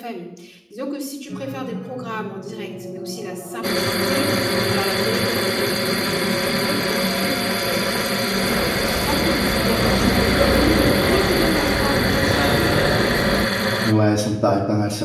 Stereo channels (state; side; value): identical; both; correlation 1.00